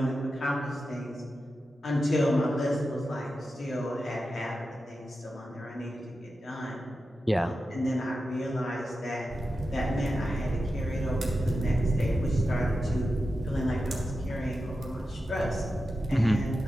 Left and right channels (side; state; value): both; normal; correlation 0.91